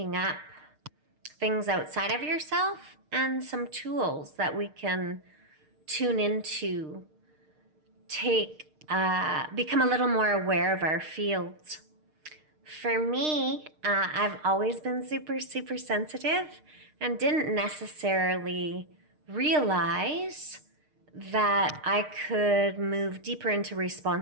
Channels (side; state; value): left; late; 6.6 ms